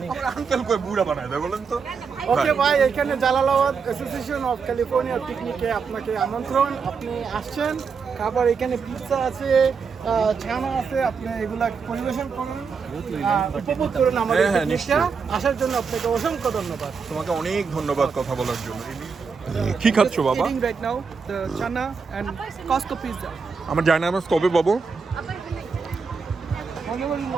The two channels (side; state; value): left; quieter; 5.5 dB